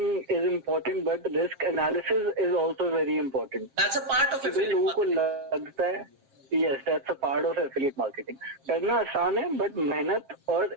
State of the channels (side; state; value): left; late; 7.5 ms